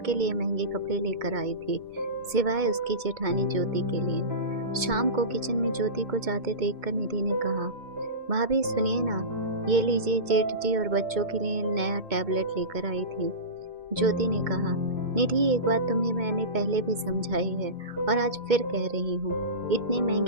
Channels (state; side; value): late; left; 2.2 ms